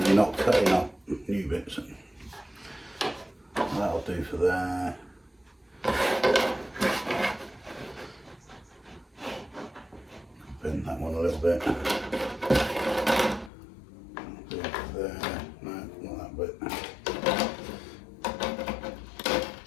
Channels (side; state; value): right; drops out; at 13.5 s